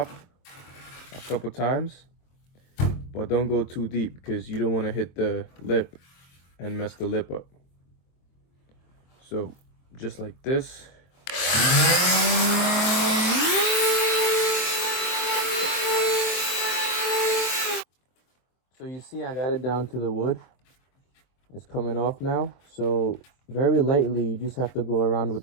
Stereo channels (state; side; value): late; right; 23 ms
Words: a couple times, but don't go too deep because you don't want to hit the lip and mess the lip up. So just like this. So you see I got it down to the wood. It's coming off now. So very lightly, you just have to go around